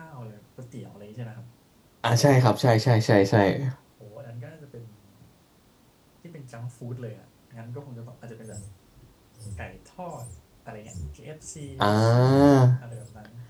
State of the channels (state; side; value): identical; both; correlation 1.00